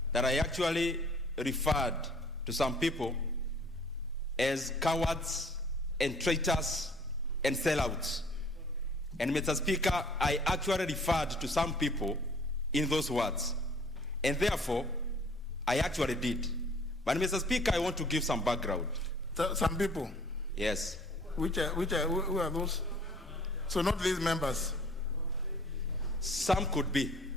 that I actually referred to some people as cowards and traitors and sellouts. And Mr. Speaker, I actually referred to some people in those words. And therefore, I actually did. But Mr. Speaker, I want to give some background. Some people? Yes. Who are those? So not these members? Some could be.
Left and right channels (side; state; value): both; normal; correlation 0.55